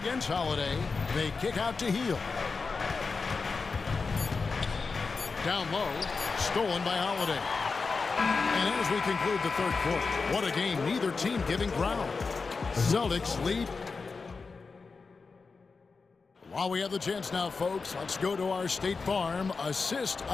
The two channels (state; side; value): quieter; right; 4.5 dB